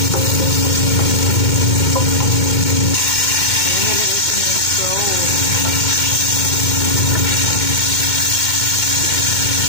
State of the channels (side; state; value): right; late; 2.2 ms